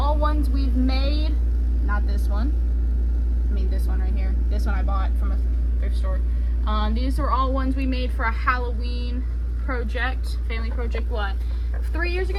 ones we've made. Not this one. I mean this one right here. This one I bought from a thrift store. These are all ones we made for a Halloween project, family project, what, 3 years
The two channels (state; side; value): identical; both; correlation 1.00